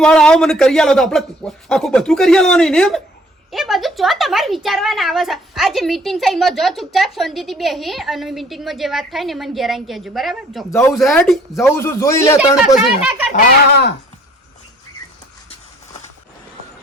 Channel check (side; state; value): both; normal; correlation 0.57